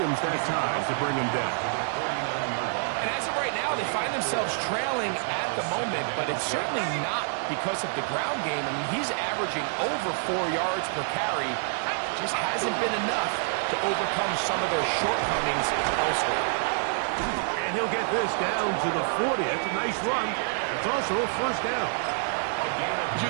that time to bring him down. And as of right now, they find themselves trailing at the moment, but it's certainly not because of the ground game. I mean, he's averaging over 4 yards per carry. Just hasn't been enough to overcome some of their shortcomings elsewhere. And he'll get this down to the 40. That's a nice run. It's also a first down. It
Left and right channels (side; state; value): left; silent; digital silence